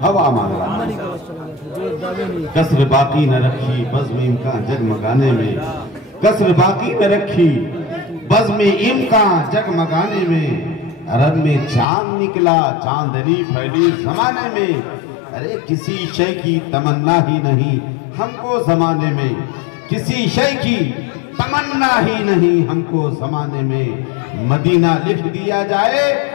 हवा मांग रहा हूँ। कसर बाकी न रखी बज़्म इम्कान जगमगाने में, कसर बाकी न रखी बज़्म इम्कान जगमगाने में। अरब में चांद निकला चांदनी फैली जमाने में। अरे किसी शय की तमन्ना ही नहीं हमको जमाने में, किसी शय की तमन्ना ही नहीं हमको जमाने में। मदीना लिख दिया जाए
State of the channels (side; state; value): right; drops out; at 11.9 s